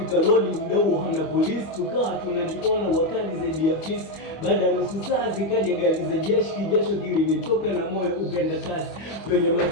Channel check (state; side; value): late; right; 25 ms